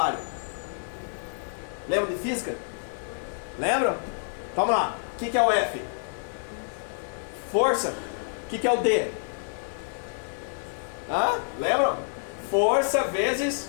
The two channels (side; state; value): right; silent; digital silence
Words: Lembram de física? Lembram? Vamos lá. O que é o F? Força. O que é o D? Lembram? Força vezes